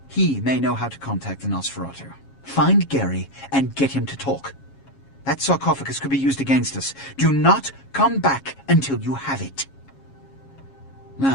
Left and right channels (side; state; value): right; late; 7.3 ms